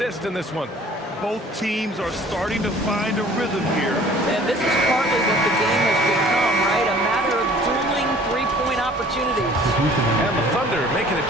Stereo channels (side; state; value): both; normal; correlation 0.51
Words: in this one. Both teams are starting to find a rhythm here. And this is partly what the game has become, right? A matter of dueling three-point opportunities. And the Thunder making a